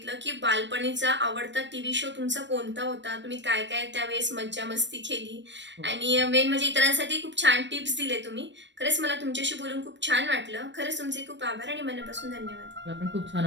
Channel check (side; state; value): left; late; 0.53 ms